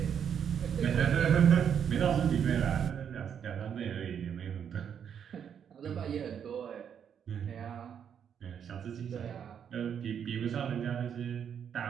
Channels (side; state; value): left; quieter; 8.1 dB